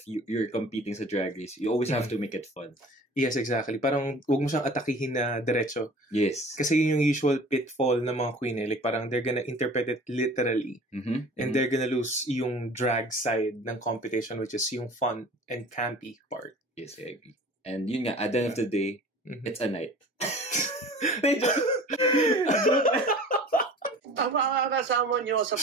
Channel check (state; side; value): normal; both; correlation 0.43